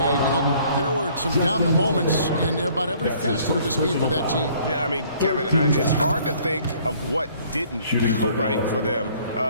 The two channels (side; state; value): both; inverted; correlation -0.58